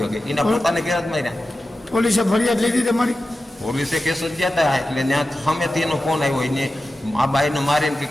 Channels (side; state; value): both; normal; correlation 0.93